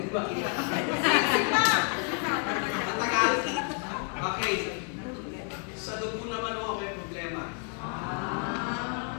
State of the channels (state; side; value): quieter; right; 38.8 dB